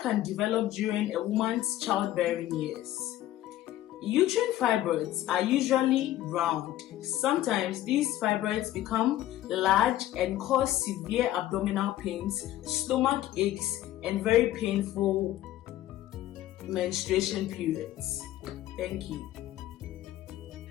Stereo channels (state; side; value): quieter; right; 13.9 dB